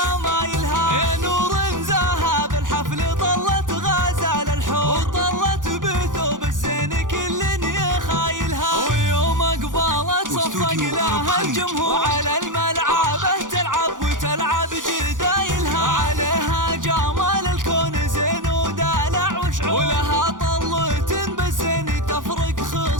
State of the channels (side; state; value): left; late; 0.88 ms